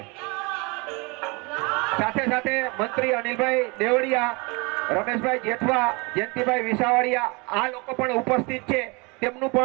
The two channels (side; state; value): left; quieter; 28.4 dB